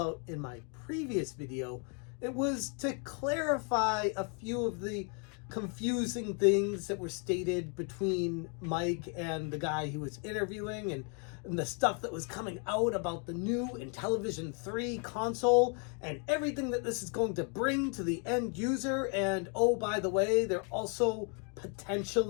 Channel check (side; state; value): right; quieter; 38.6 dB